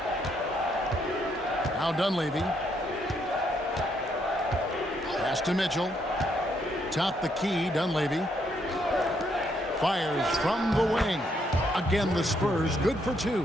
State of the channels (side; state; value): both; normal; correlation 0.74